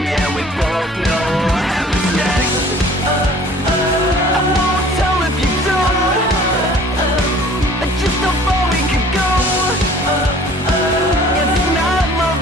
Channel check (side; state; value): both; normal; correlation 0.51